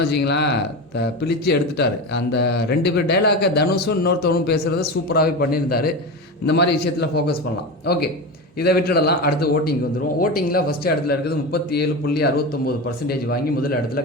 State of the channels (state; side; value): normal; both; correlation 0.23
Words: வச்சிங்களேன், பிழிச்சு எடுத்துட்டார். அந்த 2 பேர் டைலாக்கை தனுஷும் இன்னொருத்தவனும் பேசுகிறத சூப்பராகவே பண்ணியிருந்தார். இந்த மாதிரி விஷயத்தில் ஃபோக்கஸ் பண்ணலாம். ஓகே, இதை விட்டுடலாம். அடுத்து ஓட்டிங் வந்துடும். ஓட்டிங்கில் ஃபஸ்ட்டு இடத்துல இருக்குது 37.69% வாங்கி முதல் இடத்துல